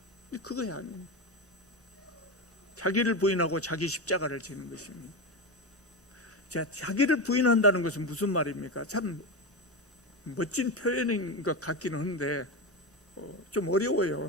근데 그거야 아니에요. 자기를 부인하고 자기 십자가를 지는 것입니다. 자, 자기를 부인한다는 것은 무슨 말입니까? 참 멋진 표현인 것 같기는 한데 좀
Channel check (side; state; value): both; normal; correlation 0.17